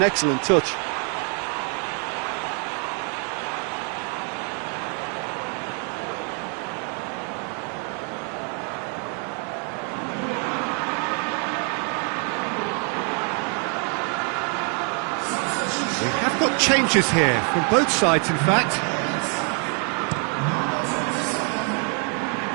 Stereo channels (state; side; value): quieter; left; 39.2 dB